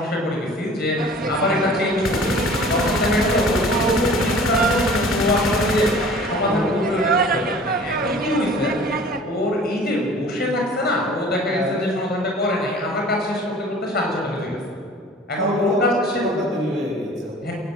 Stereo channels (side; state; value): both; normal; correlation 0.46